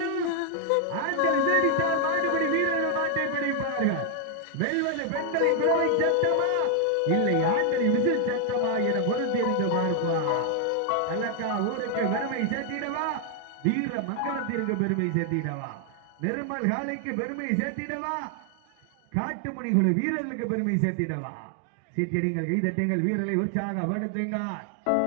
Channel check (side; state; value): both; different; correlation 0.00